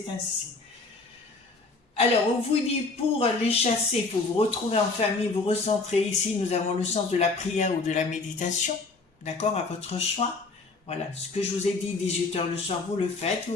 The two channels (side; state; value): right; quieter; 3.7 dB